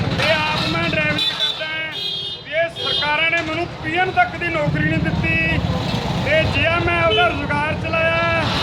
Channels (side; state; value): both; identical; correlation 1.00